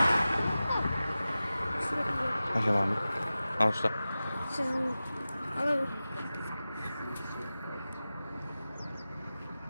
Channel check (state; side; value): inverted; both; correlation -0.95